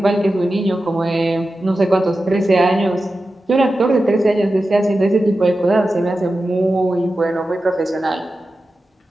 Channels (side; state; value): both; normal; correlation 0.92